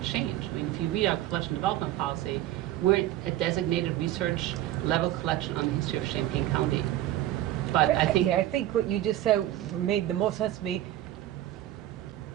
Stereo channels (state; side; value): quieter; left; 13.8 dB